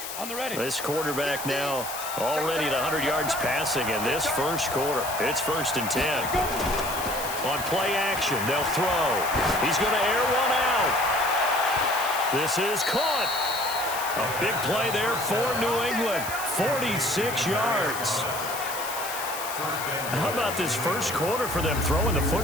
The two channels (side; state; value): left; noise; hiss, 8 dB below the sound